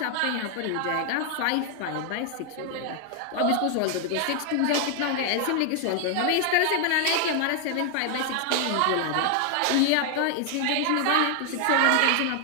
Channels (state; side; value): different; both; correlation 0.00